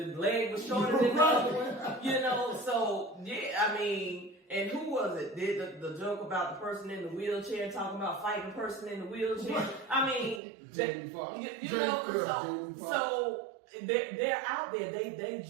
leg was shorter than the other one? You know, so, yeah, I mean, and who was it? Did the joke about the person in the wheelchair talking about fighting the person in the wheelchair? I mean, you know, so they're out there. They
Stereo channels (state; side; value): drops out; left; at 10.4 s